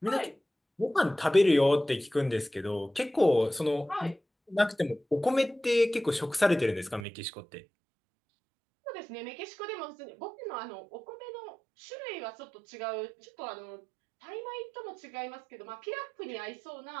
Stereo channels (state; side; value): drops out; left; at 7.1 s